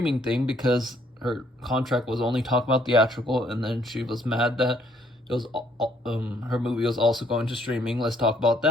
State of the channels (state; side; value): normal; both; correlation 0.66